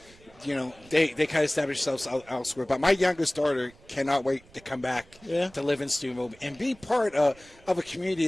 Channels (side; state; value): right; noise; rumble, 26 dB below the sound